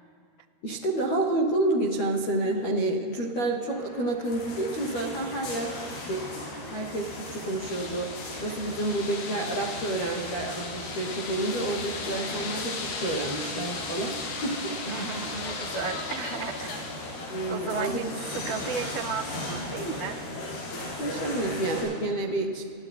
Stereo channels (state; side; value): late; right; 13 ms